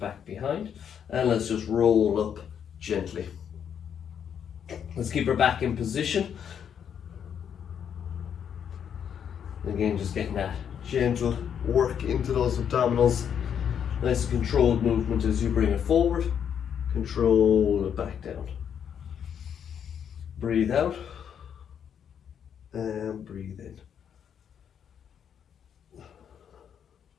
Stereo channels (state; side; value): quieter; right; 8.3 dB